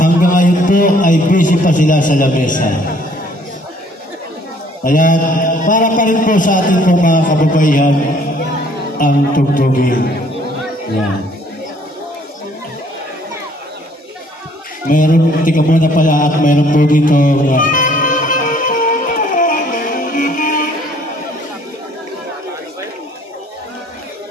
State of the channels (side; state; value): both; normal; correlation 0.60